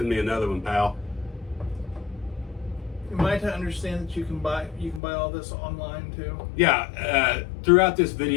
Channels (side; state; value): right; drops out; at 5.0 s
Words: me another one, pal. Am I to understand that you can buy all this online too? Yeah, throughout this